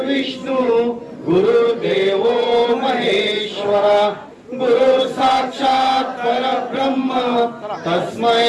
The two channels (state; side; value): identical; both; correlation 1.00